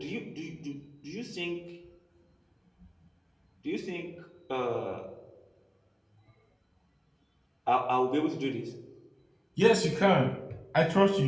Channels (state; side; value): identical; both; correlation 1.00